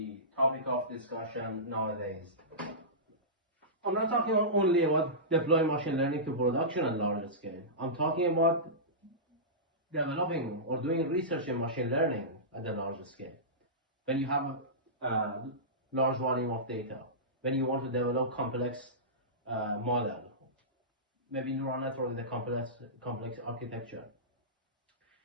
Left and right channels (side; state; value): both; normal; correlation -0.18